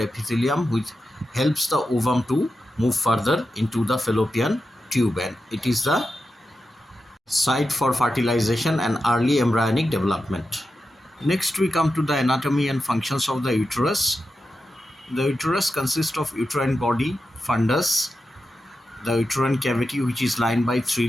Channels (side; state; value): both; normal; correlation 0.90